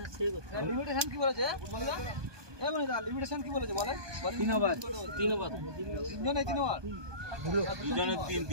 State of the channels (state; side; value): late; left; 1.2 ms